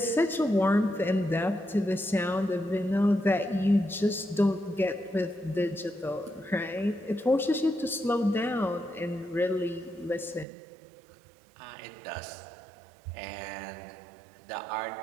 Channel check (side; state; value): left; drops out; at 10.5 s